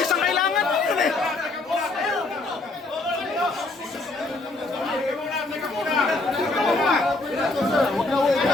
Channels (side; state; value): right; quieter; 3.2 dB